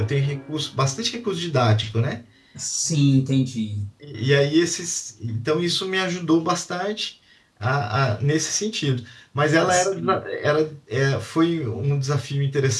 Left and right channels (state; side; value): identical; both; correlation 1.00